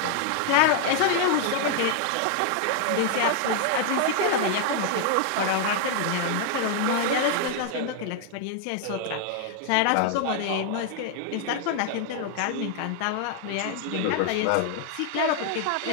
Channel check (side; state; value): both; different; correlation 0.00